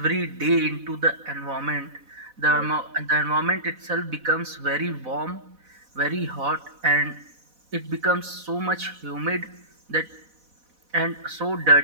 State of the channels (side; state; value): left; late; 4.0 ms